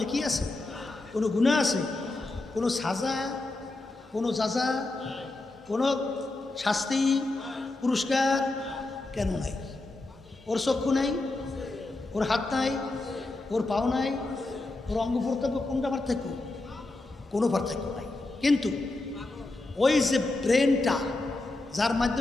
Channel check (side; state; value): right; quieter; 3.0 dB